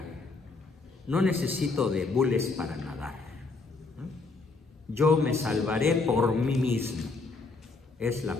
No necesito de bules para nadar. Yo me salvaré por mí mismo. Es la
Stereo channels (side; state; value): right; quieter; 3.9 dB